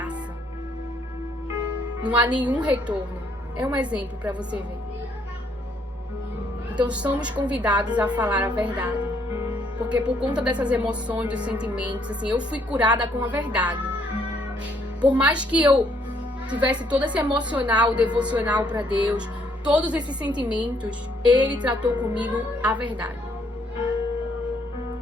Não há nenhum retorno. É um exemplo para você ver. Então somos convidados a falar a verdade. Porque por conta dessas emoções, dos sentimentos, assim, eu fui curada com a verdade. Por mais que eu tivesse todo esse emocional, devocional para Deus, todos esses sentimentos, Ele tratou comigo a verdade.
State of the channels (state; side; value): normal; both; correlation 0.68